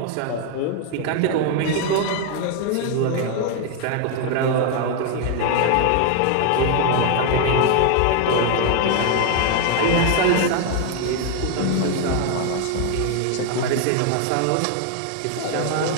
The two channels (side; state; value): both; different; correlation 0.01